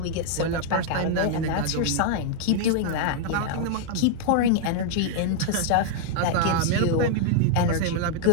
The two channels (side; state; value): both; different; correlation -0.01